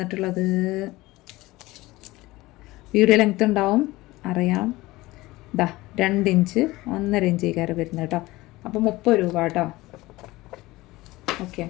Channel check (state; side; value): quieter; right; 19.5 dB